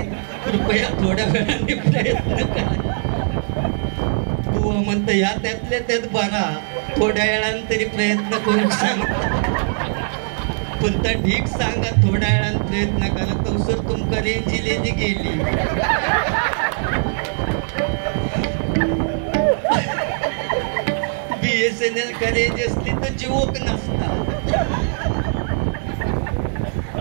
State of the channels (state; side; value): silent; left; 65 dB below the other